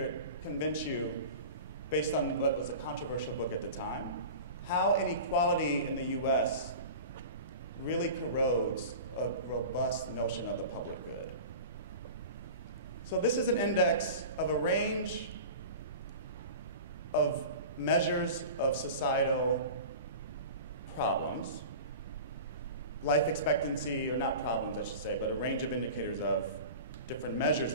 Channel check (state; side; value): inverted; both; correlation -0.35